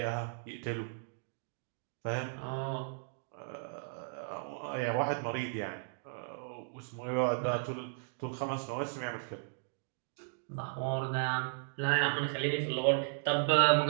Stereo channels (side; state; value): left; silent; digital silence